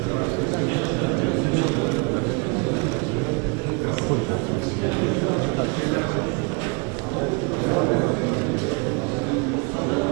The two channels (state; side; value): quieter; left; 32.0 dB